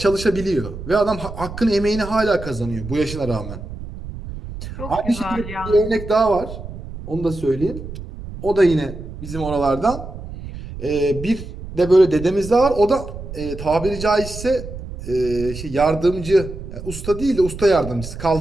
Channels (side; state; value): right; noise; rumble, 11 dB below the sound